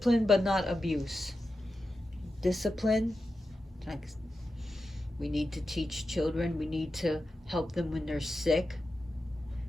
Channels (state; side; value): normal; both; correlation 0.91